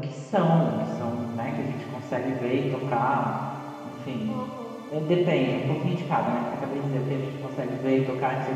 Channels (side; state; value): both; identical; correlation 1.00